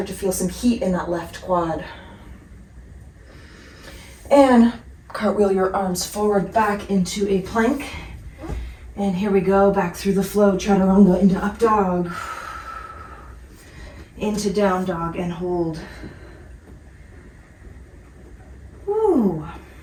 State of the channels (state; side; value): identical; both; correlation 1.00